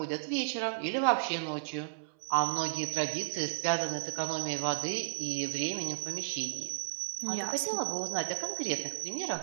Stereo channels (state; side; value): silent; left; 55 dB below the other